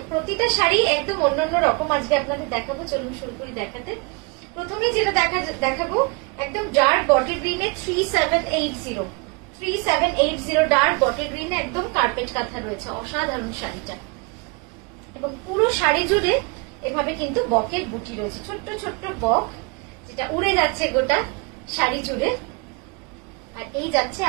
প্রতিটা শাড়ি একদম অন্যান্য রকম আজকে আপনাদের দেখাবো। চলুন শুরু করি দেখাতে। প্রথমেই যেটা দেখাবো একদম ডার্ক বটল গ্রিনে 3780 ডার্ক বটল গ্রিনে একদম কার্পেট কাঁথা রয়েছে। অসাধারণ শাড়িটা, এবং পুরো শাড়ি জুড়ে এভাবে কিন্তু বকের বুটি রয়েছে, ছোট্ট ছোট্ট বক, যেটা উড়ে যাচ্ছে গোটা শাড়ি জুড়ে। আর এই যাচ্ছে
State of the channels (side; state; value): left; quieter; 30.1 dB